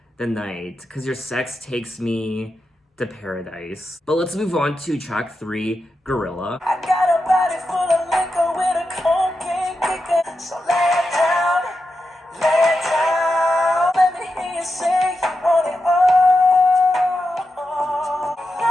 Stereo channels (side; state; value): both; normal; correlation 0.88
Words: the night, because your sex takes me to paradise." But let's move on to track 3, Gorilla. I got a body full of liquor with a cocaine kicker, so lay it down, lay it down. Let me hear you say you want it all.